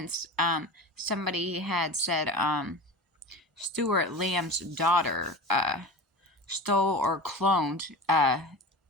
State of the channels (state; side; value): normal; both; correlation 0.31